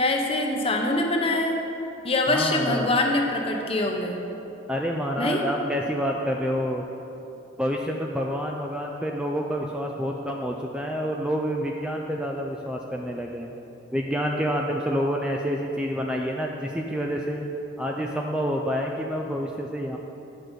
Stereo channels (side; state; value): both; normal; correlation 0.49